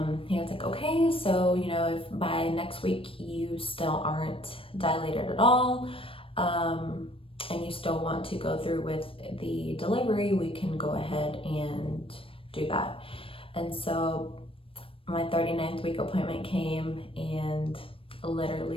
he was like, okay, so, you know, if by next week you still aren't dilated at all, and you still want to go through with the delivery, we can go ahead and do that. And so my 39th week appointment came, and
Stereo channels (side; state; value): right; late; 0.26 ms